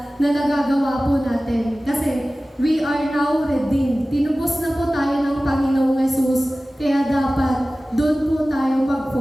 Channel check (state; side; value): normal; both; correlation 0.97